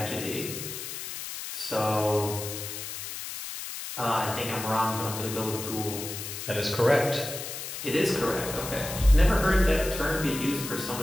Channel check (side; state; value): left; noise; hiss, 7 dB below the sound